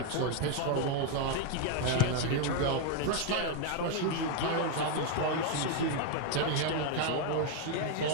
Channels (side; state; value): both; different; correlation 0.01